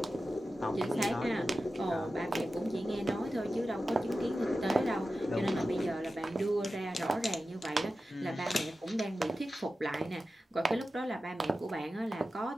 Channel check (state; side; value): normal; both; correlation 0.93